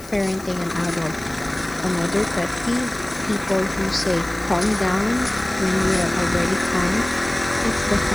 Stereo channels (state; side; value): noise; left; hiss, 20 dB below the sound